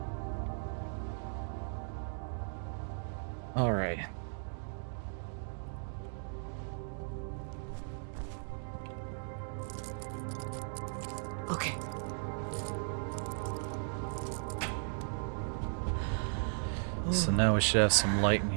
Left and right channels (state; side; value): silent; left; digital silence